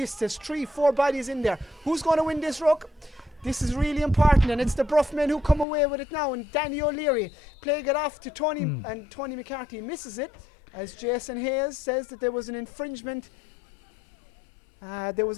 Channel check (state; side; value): drops out; right; at 5.7 s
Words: there's 3-4 bodies in there. Who's going to win this ruck? This is really important, and it's the Bruff men who come away with it now. And Danny O'Leary playing it off to Tony, and Tony McCarthy misses it, as Jason Hayes says that there was an infringement. There